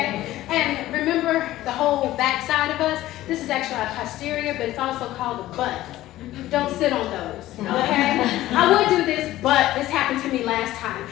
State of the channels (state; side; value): quieter; right; 15.3 dB